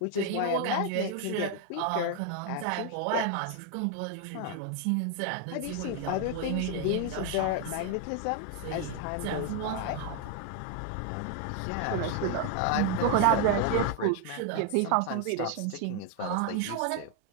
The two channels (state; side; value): different; both; correlation 0.01